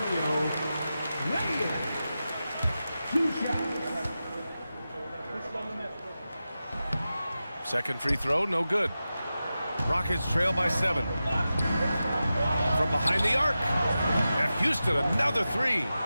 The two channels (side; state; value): both; inverted; correlation -0.93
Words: negative. 2 shots. Second free throw, no good. Rockets trail by 7. From behind the arc. And Houston, another 3.